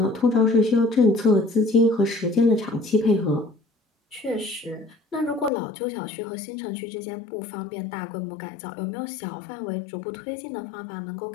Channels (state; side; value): drops out; right; at 5.5 s